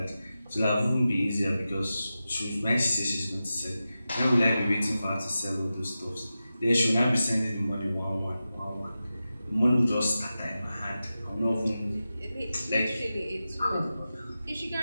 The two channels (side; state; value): both; inverted; correlation -0.93